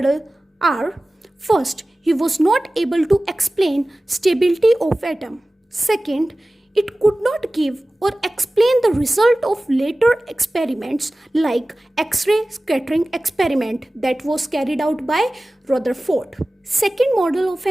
are: first, he was not able to explain stability of atom. Second, it could not give or explain the result of later experiments like X-ray scattering experiment that was carried out by Rutherford. Second model of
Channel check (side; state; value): both; normal; correlation 0.97